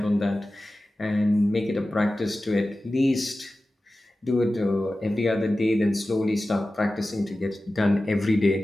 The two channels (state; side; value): normal; both; correlation 0.95